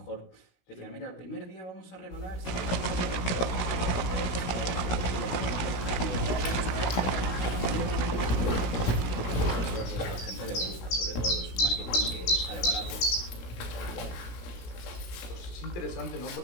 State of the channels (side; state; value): right; late; 17 ms